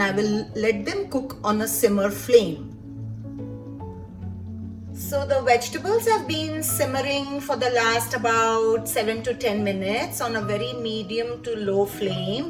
I will let them cook on a simmer flame. So the vegetables have been simmering for the last about 7 to 10 minutes on a very medium to low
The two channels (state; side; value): identical; both; correlation 1.00